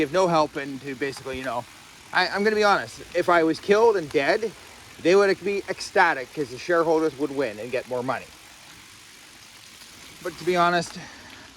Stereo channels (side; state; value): both; identical; correlation 1.00